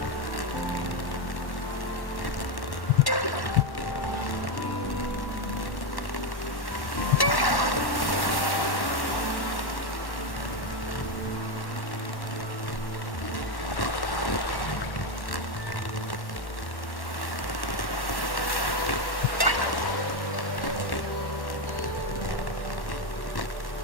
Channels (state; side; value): late; right; 1.1 ms